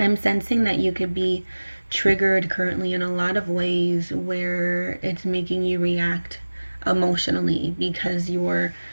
that you could be triggered currently in a lot of ways where it's making you react emotionally because you're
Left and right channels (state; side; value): inverted; both; correlation -1.00